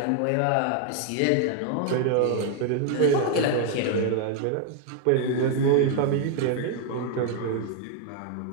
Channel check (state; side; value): different; both; correlation 0.00